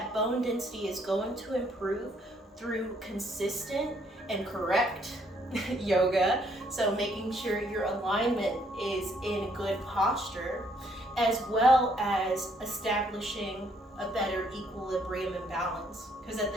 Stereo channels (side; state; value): both; normal; correlation 0.68